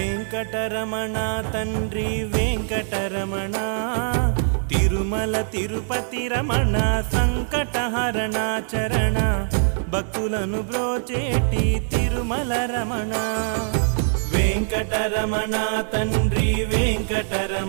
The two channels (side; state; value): left; silent; 60 dB below the other